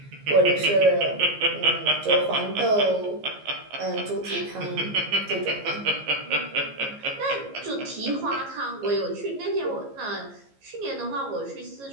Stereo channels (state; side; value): late; left; 15 ms